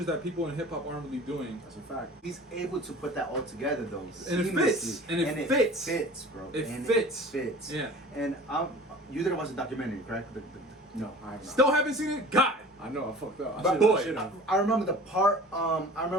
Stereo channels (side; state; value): both; normal; correlation 0.43